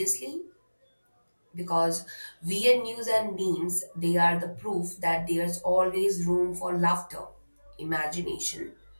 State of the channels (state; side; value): inverted; both; correlation -1.00